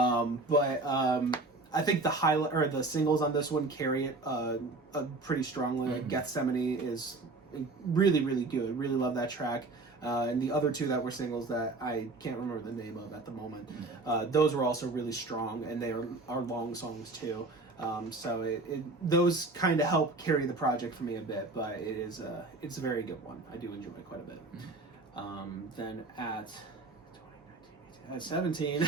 I think the highlight or the singles on this one carry it pretty strongly. Like Gethsemane is really, really good. Really love that track. And the other two that were singles that I can't remember the name of at the moment, those were also really strong, and they are long songs too. So those kind of help carry the project for me a bit, but it's a very good one. I do enjoy it quite a bit. Then at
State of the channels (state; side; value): quieter; left; 3.3 dB